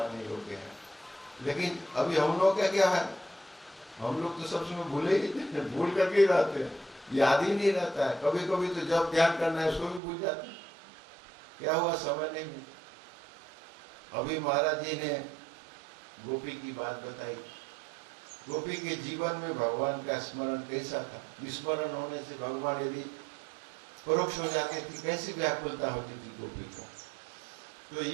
योग्य हैं। लेकिन अभी हम लोग क्या है, हम लोग तो सब समय भूले ही, भूल करके ही रहते हैं, याद ही नहीं रहता है। कभी कभी तो जब ध्यान करना है उसको भी भूल जाते हैं, क्या हुआ समय नहीं मिला। अभी महाराज जी ने गोपी की बात बताई। गोपी के जीवन में भगवान का स्मरण कैसा था, विस्मरण होने से भगवान यदि परोक्ष हो जाते थे, कैसी व्याकुलता होती थी गोपी को। तो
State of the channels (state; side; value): drops out; left; at 10.0 s